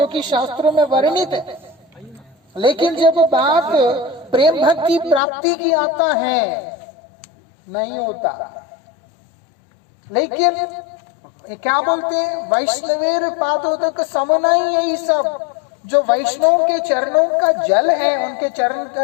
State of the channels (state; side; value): drops out; right; at 5.2 s